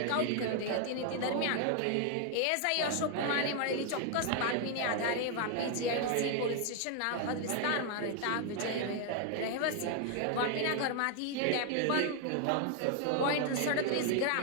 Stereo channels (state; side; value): different; both; correlation 0.00